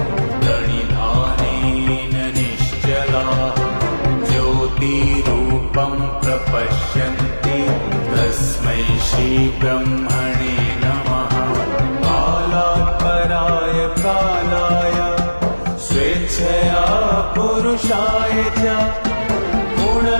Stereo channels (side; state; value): both; inverted; correlation -1.00